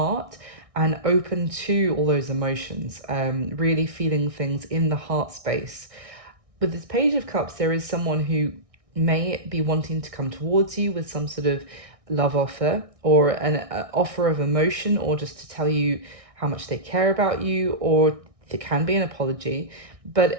and open to all those emotions, really feeling things in the heart space. With this Page of Cups, there is someone who may be wanting to come towards you with some sort of love offer, or an offer of emotion, or just to tell you how much they care about you, or it can be an apology. But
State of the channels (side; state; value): left; late; 1.6 ms